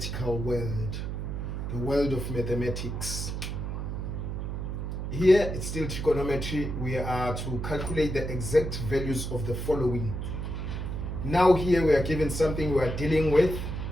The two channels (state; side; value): noise; right; hum, 4 dB below the sound